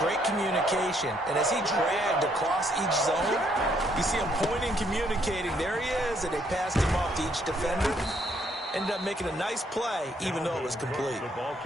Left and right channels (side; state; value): both; normal; correlation 0.70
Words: communication. And as he dragged across each zone, you see him pointing, communicating. There he is, and they passed him off to each defender. Ended up making a nice play, even though it was complete.